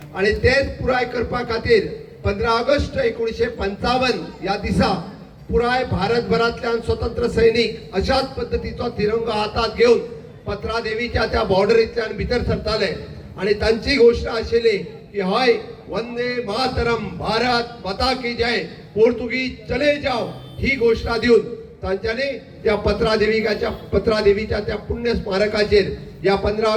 आणि तेच पुराय करपा खातीर 15 ऑगस्ट 1955 या दिसा पुराय भारतभरांतल्यान स्वतंत्र सैनिक अशाच पद्धतीचो तिरंगो हातात घेवन पत्रा देवीच्या त्या बॉर्डरींतल्यान भितर सरताले आणि तांची घोषणा आशिल्ली की हय वंदे मातरम, भारत माता की जय, पोर्तुगीज चले जाओ ही घोषणा दिवन तांच्यांनी त्या पत्रा देवीच्या त्या पुण्य स्मारकाचेर या 15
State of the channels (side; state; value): both; identical; correlation 1.00